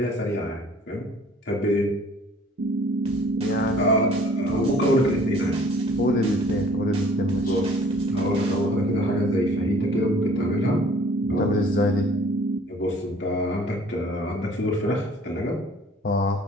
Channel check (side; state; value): both; normal; correlation 0.53